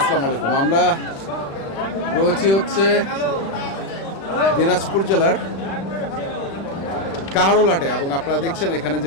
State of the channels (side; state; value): right; late; 36 ms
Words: আলাইকুম। আমরা রয়েছি হচ্ছে দিনাজপুর জেলার কাহারোলহাটে এবং আপনারা দেখছেন এখানে